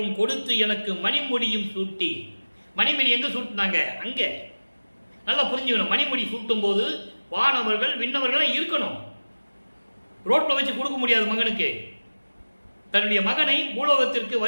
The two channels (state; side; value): inverted; both; correlation -1.00